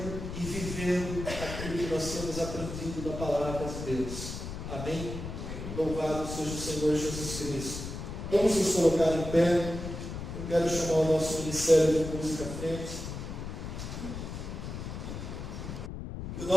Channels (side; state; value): left; noise; rumble, 7 dB below the sound